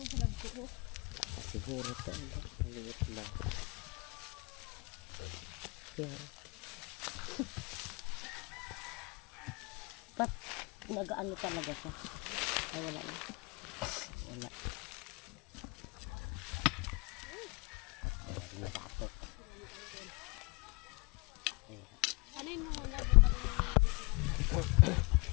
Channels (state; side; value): quieter; right; 28.3 dB